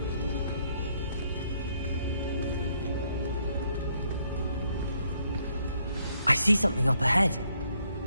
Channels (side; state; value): both; inverted; correlation -0.71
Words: I see something up ahead.